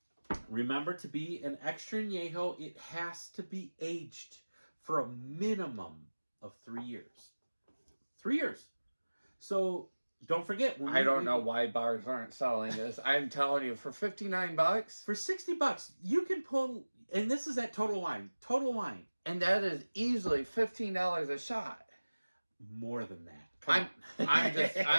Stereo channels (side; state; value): both; inverted; correlation -1.00